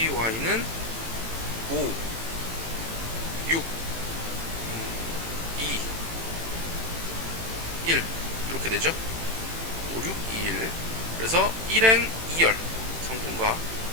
5, 6, 2, 1 이렇게 되죠. 5, 6, 2, 1. 그래서 1행 2열 성분과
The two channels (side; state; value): left; late; 18 ms